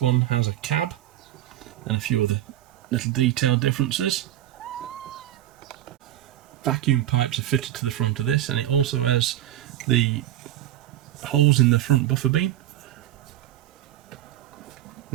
one has a cab and a few other little detail differences. Vacuum pipes are fitted to the front of this, and it also has the holes in the front buffer beam.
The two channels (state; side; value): quieter; left; 13.2 dB